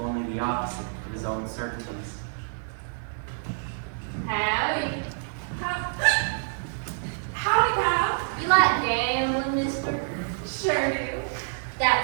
only the opposite of his own certainties. Howdy. Howdy, pal. You like gambling, mister? Sure do.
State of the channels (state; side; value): silent; left; digital silence